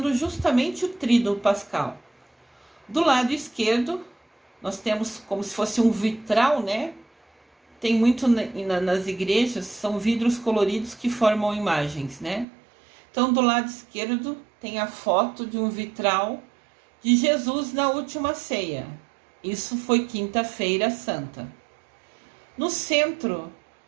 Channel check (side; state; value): left; drops out; at 12.5 s